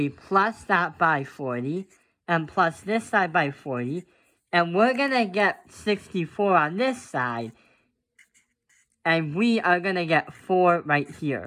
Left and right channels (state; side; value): identical; both; correlation 1.00